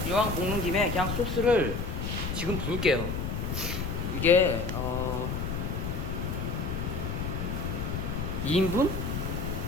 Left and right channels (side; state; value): left; noise; rumble, 2 dB below the sound